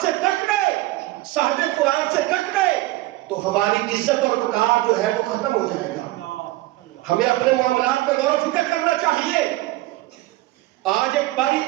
سے کٹ گئے، صاحب قرآن سے کٹ گئے، تو ہماری عزت اور وقار جو ہے وہ ختم ہو جائے گا۔ ہمیں اپنے معاملات میں غور و فکر کرنا چاہیے۔ آج ایک بڑی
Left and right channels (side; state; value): left; quieter; 18.4 dB